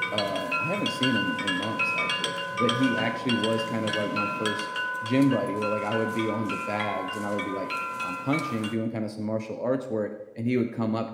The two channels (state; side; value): identical; both; correlation 1.00